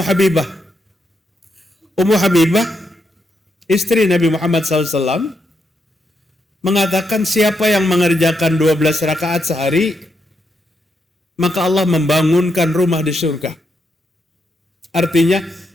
Habibah. Ummu Habibah, istri Nabi Muhammad SAW, mengatakan siapa yang mengerjakan 12 rakaat sehari, maka Allah membangunkan rumah di surga. Artinya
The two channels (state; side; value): normal; both; correlation 0.81